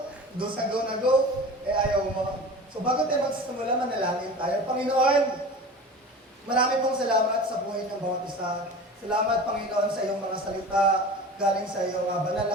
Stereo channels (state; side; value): normal; both; correlation 0.36